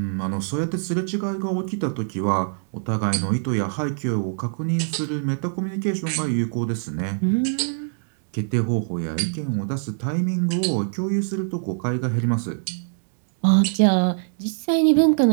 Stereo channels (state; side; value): silent; left; digital silence